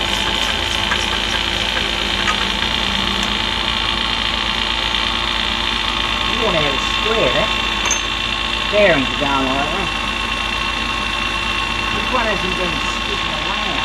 Worn out square, that. Bearings are going like that. This one hasn't been sticking around.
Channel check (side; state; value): both; identical; correlation 1.00